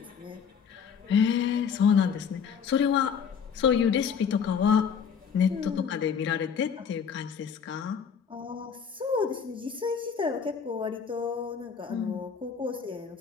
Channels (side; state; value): right; quieter; 6.9 dB